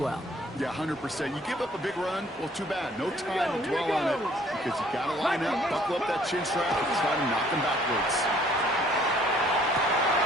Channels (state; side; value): normal; both; correlation 0.59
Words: Yeah, 100%. You give up a big run, well, too bad. No time to dwell on it because you got to line up, buckle up that chin strap, and try to knock them backwards.